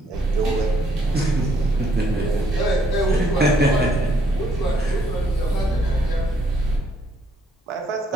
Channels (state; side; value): normal; both; correlation 0.69